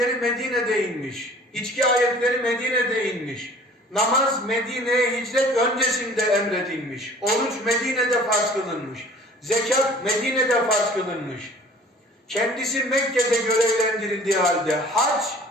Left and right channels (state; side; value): normal; both; correlation 0.49